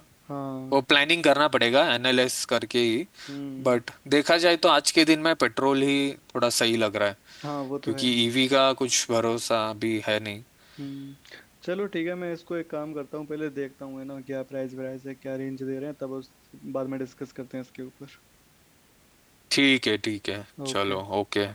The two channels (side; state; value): both; identical; correlation 1.00